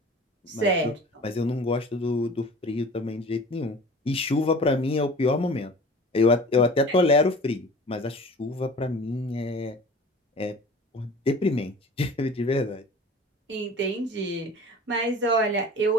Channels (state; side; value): normal; both; correlation 0.41